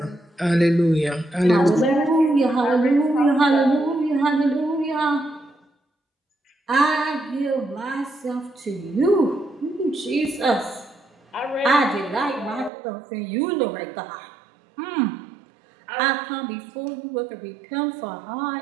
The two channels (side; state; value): left; drops out; at 12.7 s